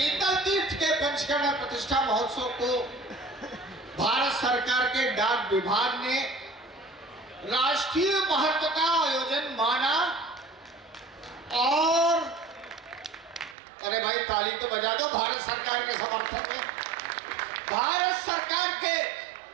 तीर्थ के पंचकर्मा प्रतिष्ठा महोत्सव को भारत सरकार के डाक विभाग ने राष्ट्रीय महत्व का आयोजन माना और अरे भाई ताली तो बजा दो भारत सरकार के समर्थन में। भारत सरकार के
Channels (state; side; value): drops out; left; at 13.6 s